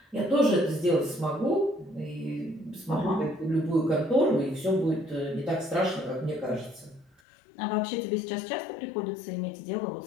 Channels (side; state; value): right; drops out; at 7.1 s